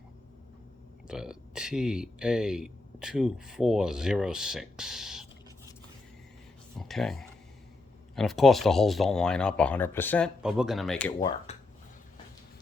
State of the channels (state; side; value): quieter; right; 3.3 dB